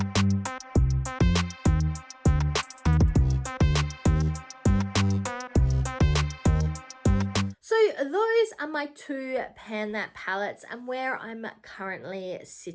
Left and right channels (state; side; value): identical; both; correlation 1.00